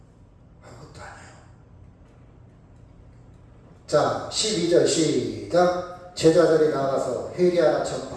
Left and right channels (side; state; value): both; identical; correlation 1.00